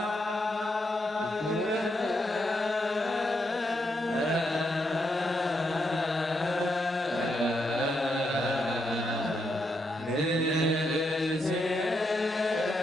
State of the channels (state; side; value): normal; both; correlation 0.80